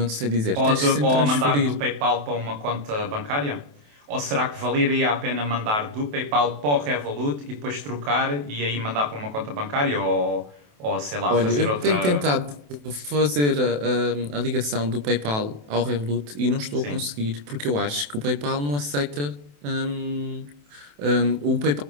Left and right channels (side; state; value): left; late; 28 ms